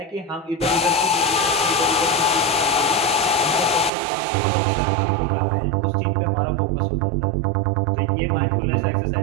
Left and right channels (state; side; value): drops out; left; at 3.9 s